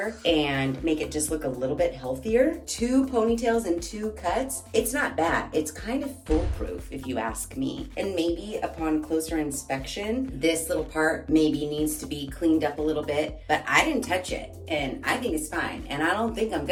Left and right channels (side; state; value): both; identical; correlation 1.00